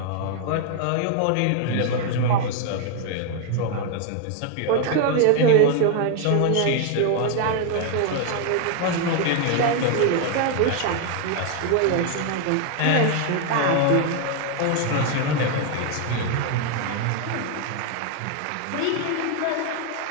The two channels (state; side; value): different; both; correlation 0.00